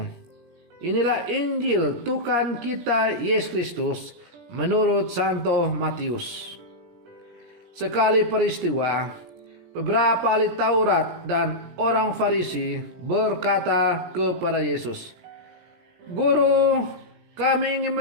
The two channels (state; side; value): late; left; 17 ms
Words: Inilah Injil Tuhan kita Yesus Kristus menurut Santo Matius. Sekali peristiwa, beberapa ahli Taurat dan orang Farisi berkata kepada Yesus, "Guru, kami ingin